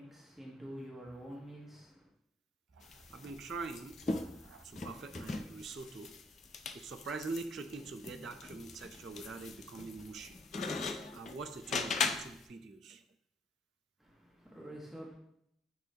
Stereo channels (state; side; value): normal; both; correlation 0.64